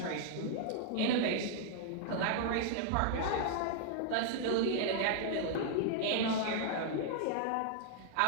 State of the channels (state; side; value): different; both; correlation -0.01